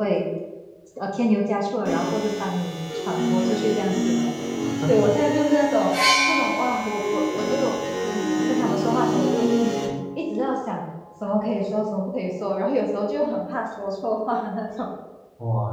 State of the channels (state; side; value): identical; both; correlation 1.00